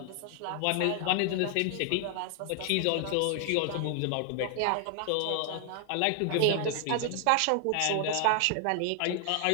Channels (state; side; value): different; both; correlation 0.00